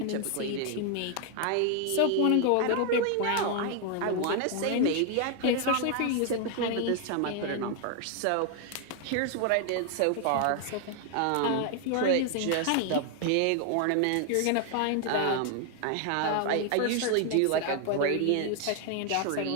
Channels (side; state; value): both; different; correlation 0.00